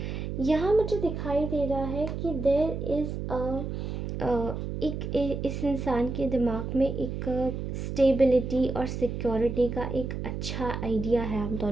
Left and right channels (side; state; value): right; noise; hum, 4 dB below the sound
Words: यहाँ मुझे दिखाई दे रहा है कि देयर इज़ इस इंसान के दिमाग में एक स्टेबिलिटी और सिक्योरिटी का एक अच्छा आइडिया है आप